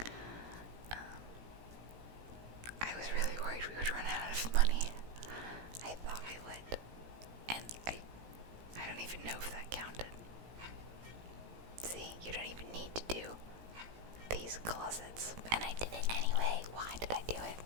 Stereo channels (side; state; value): left; late; 17 ms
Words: I was really worried we would run out of money. I thought we would. And I don't even know if that counted. See, you don't even need to do these closets. And I did it anyway. Why did I do it?